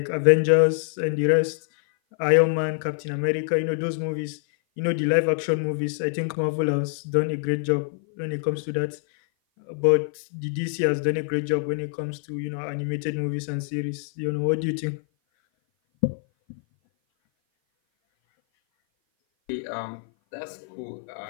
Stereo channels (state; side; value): silent; right; 56 dB below the other